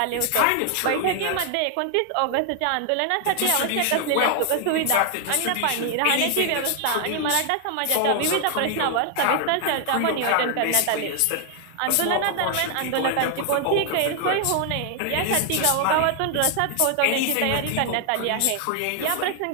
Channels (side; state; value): both; different; correlation 0.00